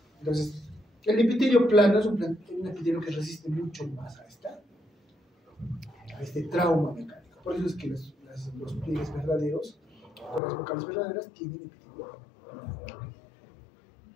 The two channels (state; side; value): drops out; right; at 10.4 s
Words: Entonces, el epitelio plano es un epitelio que resiste mucho más a este trauma mecánico. Por eso es que los pliegues verdaderos, o las vocales verdaderas, tienen epitelio plano.